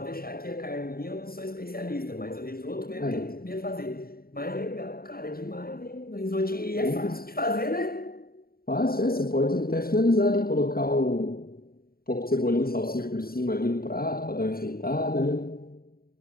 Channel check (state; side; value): late; right; 0.43 ms